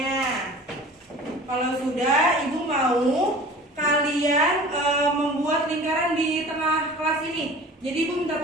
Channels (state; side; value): normal; both; correlation 0.42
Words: Kalau sudah, Ibu mau kalian membuat lingkaran di tengah kelas ini. Jadi Ibu minta